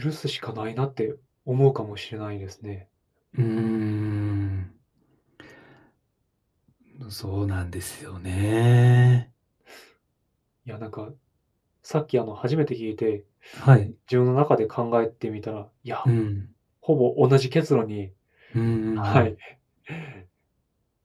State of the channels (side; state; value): both; identical; correlation 1.00